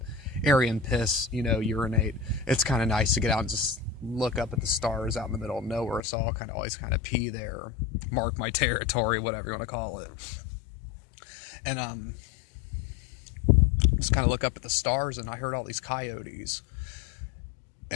area and piss, urinate. It's kind of nice to get out and just look up at the stars out in the middle of nowhere, so I'll always pee there, mark my territory, whatever you want to call it. And just kind of look up at the stars, and I heard all these coyotes.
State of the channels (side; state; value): right; drops out; at 6.0 s